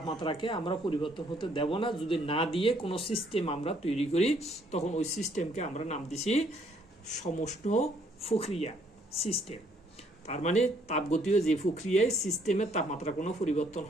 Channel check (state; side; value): normal; both; correlation 0.66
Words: আমরা পরিবর্তন হতে দেব না। যদি না দিয়ে কোনো সিস্টেম আমরা তৈরি করি তখন ওই সিস্টেমকে আমরা নাম দিছি সমষ্ণ প্রক্রিয়া সিস্টেম। তার মানে তাপগতীয় যে প্রক্রিয়ায় সিস্টেমের তাপমাত্রা কোনো পরিবর্তন